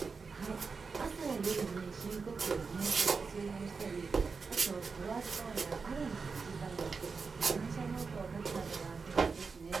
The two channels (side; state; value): left; quieter; 4.9 dB